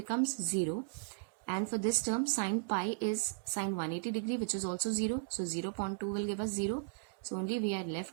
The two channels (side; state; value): left; silent; 54 dB below the other